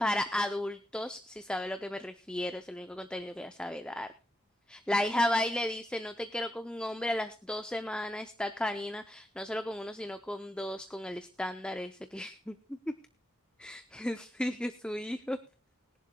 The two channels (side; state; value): both; normal; correlation 0.86